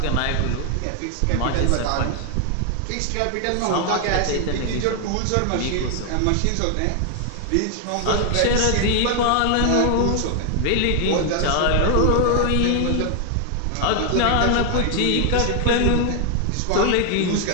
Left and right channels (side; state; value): both; different; correlation 0.00